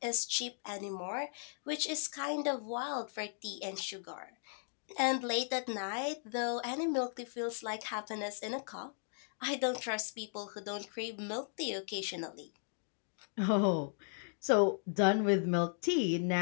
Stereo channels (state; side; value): silent; right; digital silence